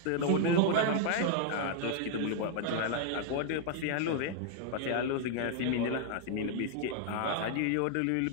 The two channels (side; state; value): both; different; correlation 0.00